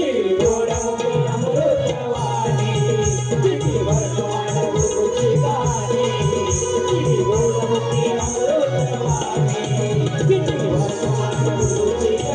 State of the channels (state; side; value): identical; both; correlation 1.00